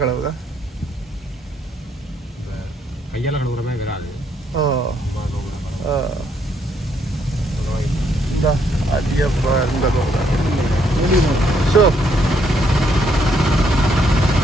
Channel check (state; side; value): normal; both; correlation 0.72